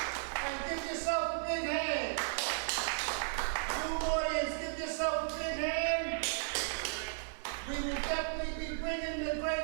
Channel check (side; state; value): left; silent; digital silence